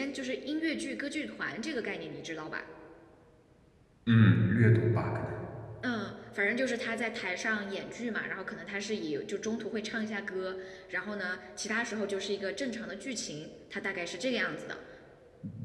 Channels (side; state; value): both; identical; correlation 1.00